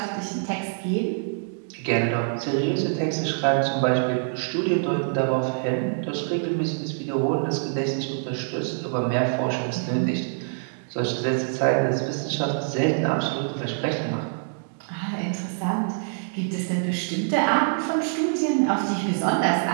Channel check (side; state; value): left; silent; digital silence